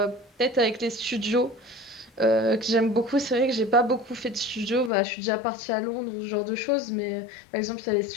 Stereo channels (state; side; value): drops out; right; at 4.9 s